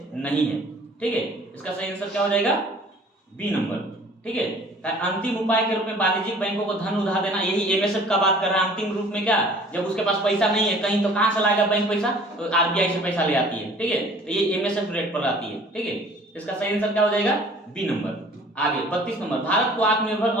नहीं है, ठीक है। इसका सही आंसर क्या हो जाएगा, बी नंबर, ठीक है। अंतिम उपाय के रूप में वाणिज्यिक बैंकों को धन उधार देना, यही एमएसएफ का बात कर रहा है। अंतिम रूप में क्या, जब उसके पास पैसा नहीं है कहीं, तो कहां से लाएगा बैंक पैसा, तो आरबीआई से पैसा ले आती है, ठीक है, तो ये एमएसएफ रेट पर आती है, ठीक है। इसका सही आंसर क्या हो जाएगा, बी नंबर। आगे 32 नंबर, भारत को आत्मनिर्भर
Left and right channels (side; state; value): both; normal; correlation 0.50